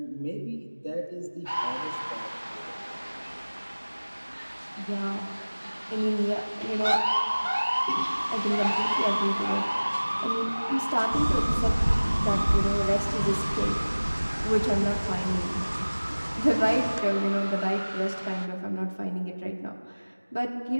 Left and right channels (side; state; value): both; inverted; correlation -1.00